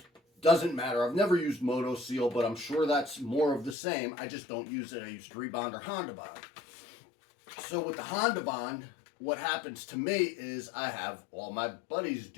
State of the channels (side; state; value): right; drops out; at 3.8 s